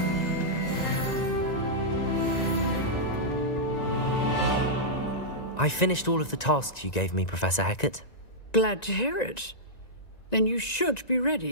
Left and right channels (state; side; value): late; right; 1.9 ms